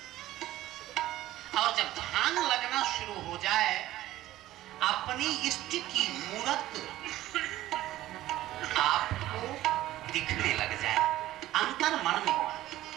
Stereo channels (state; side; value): quieter; left; 15.0 dB